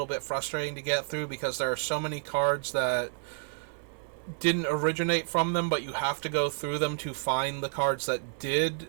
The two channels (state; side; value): silent; left; 58 dB below the other